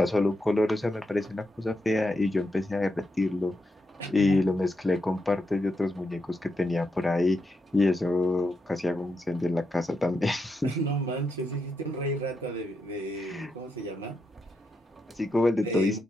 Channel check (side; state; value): both; normal; correlation 0.84